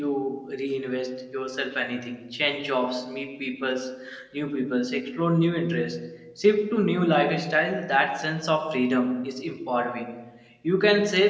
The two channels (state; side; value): identical; both; correlation 1.00